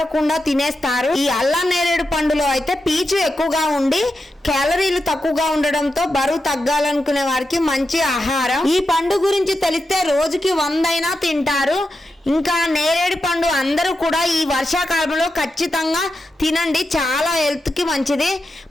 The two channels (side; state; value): both; normal; correlation 0.88